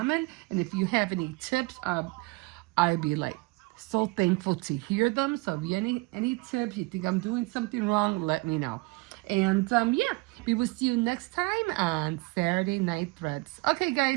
And if you have any tips, I'd be like so thankful to hear them. So if you any tips, you think I'm doing something wrong, let me know. And yeah, we will see you next time on Saturday Night Threads. Okay,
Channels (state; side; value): quieter; left; 25.8 dB